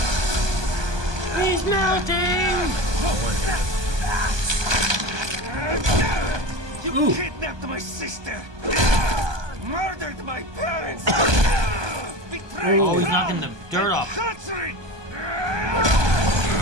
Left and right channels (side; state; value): left; late; 1.2 ms